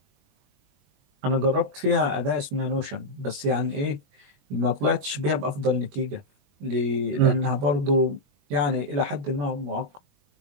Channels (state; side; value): late; left; 21 ms